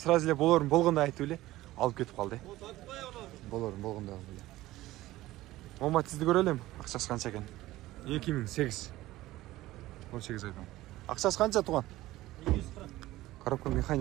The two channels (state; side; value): quieter; left; 16.8 dB